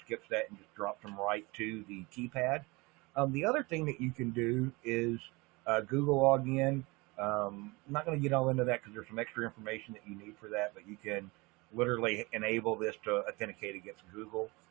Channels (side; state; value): left; quieter; 24.8 dB